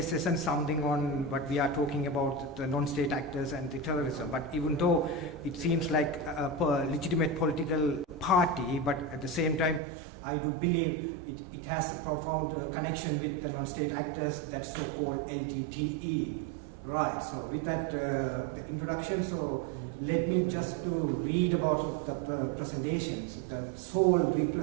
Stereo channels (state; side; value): drops out; left; at 9.8 s